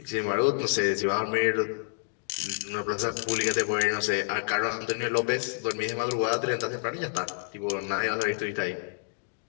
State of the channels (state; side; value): silent; right; digital silence